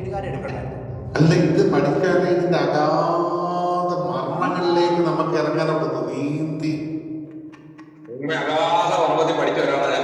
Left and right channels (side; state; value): both; identical; correlation 1.00